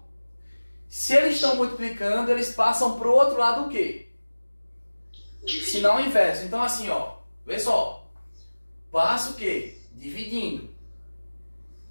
Se eles estão multiplicando, eles passam para o outro lado o quê? Sinal inverso. Então assim, ó, vê só. Passa o quê? Dividindo.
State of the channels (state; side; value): inverted; both; correlation -1.00